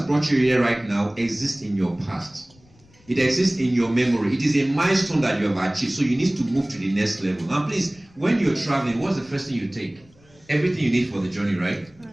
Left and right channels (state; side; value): noise; left; rumble, 29 dB below the sound